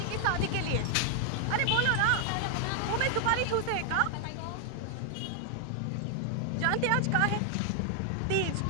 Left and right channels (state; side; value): different; both; correlation 0.00